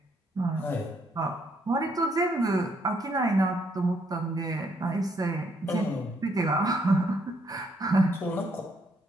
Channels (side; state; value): both; normal; correlation 0.71